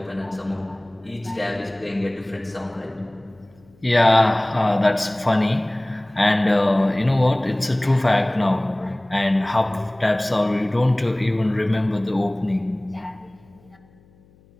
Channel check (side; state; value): left; noise; hum, 30 dB below the sound